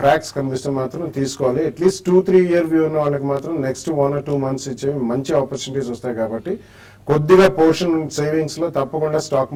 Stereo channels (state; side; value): identical; both; correlation 1.00